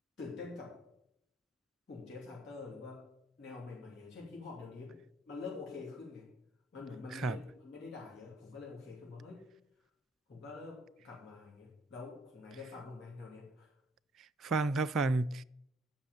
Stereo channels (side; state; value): both; normal; correlation 0.65